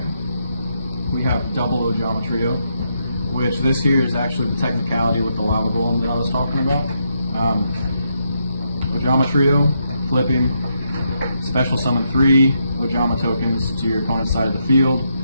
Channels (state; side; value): inverted; both; correlation -0.80